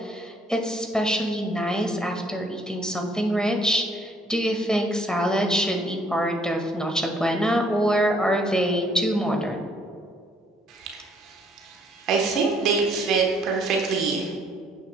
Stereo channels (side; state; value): both; normal; correlation 0.64